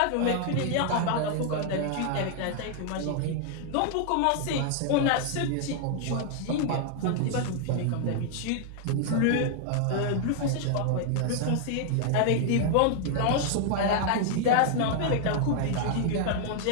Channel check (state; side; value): different; both; correlation 0.00